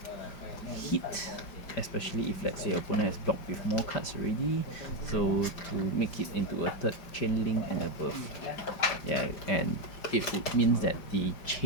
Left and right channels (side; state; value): right; late; 5.3 ms